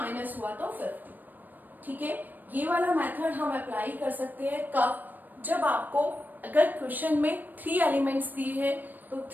हुआ तो 50। ठीक है, ये वाला मेथड हम अप्लाई कर सकते हैं कब, जब आपको अगर क्वेश्चन में 3 एलिमेंट्स दिए हैं तो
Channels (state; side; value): late; left; 0.088 ms